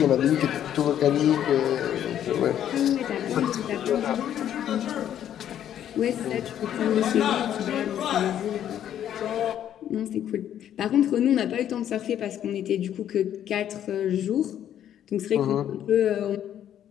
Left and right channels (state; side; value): quieter; right; 10.5 dB